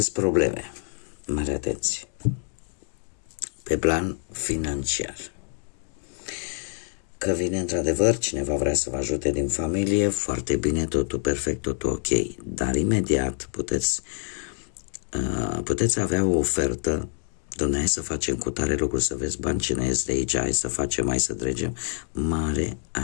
probleme, mare atenție, pe plan financiar, că vine într-adevăr cineva vrea să vă ajute din familie, foarte bine, totul perfect, totul ok, dar imediat puteți avea o ofertă, dom'le, hai să facem cu tare lucru, să vezi bani ce ne ies de aici, hai să facem, hai să dregem. Mare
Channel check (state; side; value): silent; right; 57 dB below the other